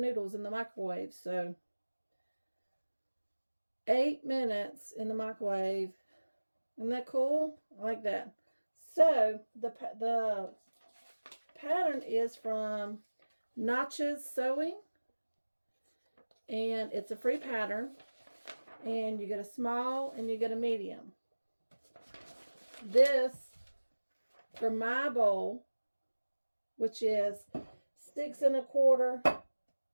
in the microwave. So 8 minutes in the microwave. Isn't that cool? I like that. So the pattern is from Notches Sewing, and it's a free pattern, and you get a small and you get a medium. This for my bowl, which is 6 1/4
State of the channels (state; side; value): inverted; both; correlation -1.00